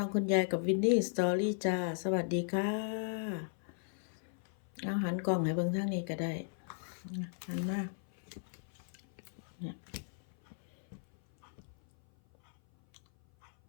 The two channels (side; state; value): right; silent; 53 dB below the other